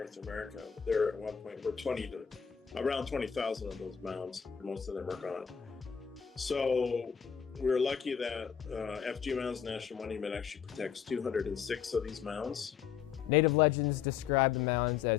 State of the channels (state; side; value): quieter; right; 7.7 dB